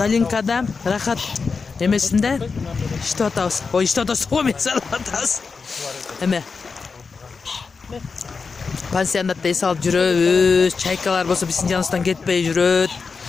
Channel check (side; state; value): right; quieter; 4.9 dB